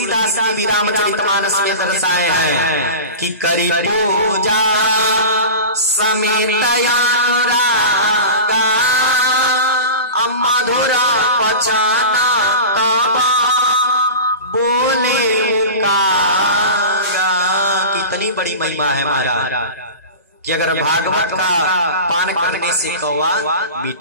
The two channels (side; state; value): both; inverted; correlation -0.31